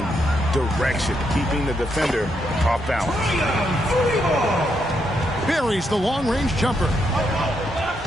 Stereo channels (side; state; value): both; normal; correlation 0.79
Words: direction, keeping the defender off balance. Buries the long-range jumper.